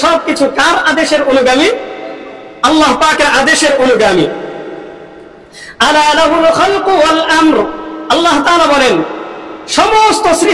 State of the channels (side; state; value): both; identical; correlation 1.00